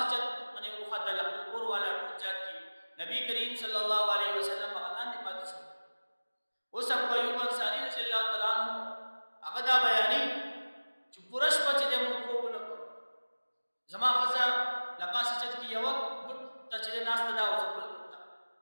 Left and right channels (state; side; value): inverted; both; correlation -1.00